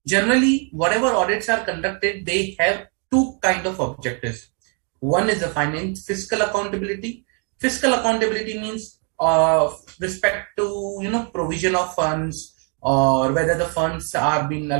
Generally, whatever audits are conducted, they have two kind of objectives. One is the fiscal accountability. Fiscal accountability means respect to provision of funds, or whether the funds are being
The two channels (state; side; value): quieter; left; 39.1 dB